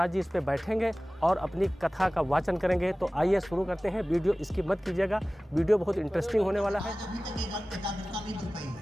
जी इस पे बैठेंगे और अपनी कथा का वाचन करेंगे। तो आइए शुरू करते हैं, वीडियो स्किप मत कीजिएगा, वीडियो बहुत इंटरेस्टिंग होने वाला है।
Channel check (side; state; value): both; normal; correlation 0.97